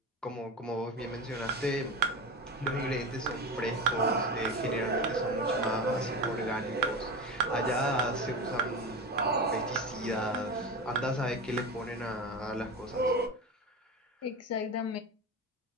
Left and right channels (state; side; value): normal; both; correlation 0.25